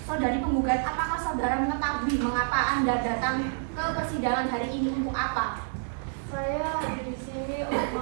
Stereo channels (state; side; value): silent; left; digital silence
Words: Saudari penggugat, apakah saudara mengetahui mengapa Anda datang ke persidangan hari ini untuk apa? Saya di sini untuk